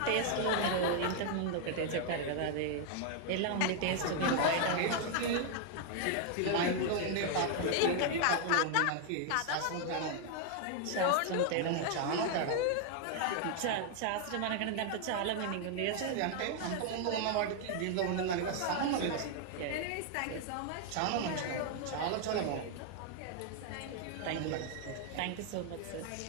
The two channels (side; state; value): both; different; correlation 0.00